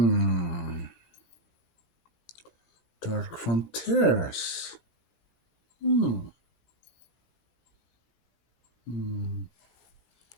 Dark Frontiers. Hmm. Hmm.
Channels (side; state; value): right; late; 16 ms